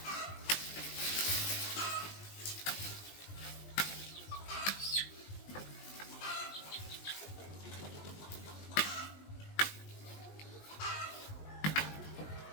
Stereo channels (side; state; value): right; late; 20 ms